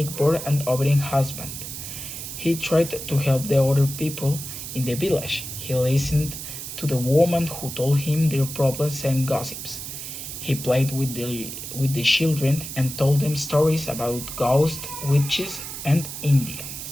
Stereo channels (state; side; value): noise; right; hiss, 8 dB below the sound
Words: and obedient husband. He tried to help the other people in the village. He listened to the women who told him their problems and gossips. He played with the children and told them stories about ghosts, witches, and